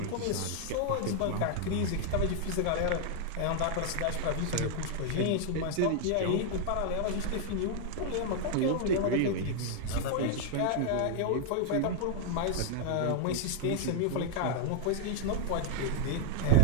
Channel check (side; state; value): both; different; correlation 0.00